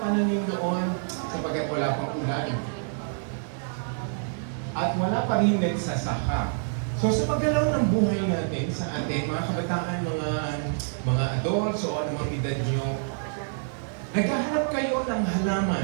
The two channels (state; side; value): silent; left; digital silence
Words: noon? Sapagkat wala pang ulan. At wala pa rin nagsasaka. So sa paggalaw ng buhay natin sa atin, mga kabataan, mga adults o anumang edad nyo, naghahanap kayo ng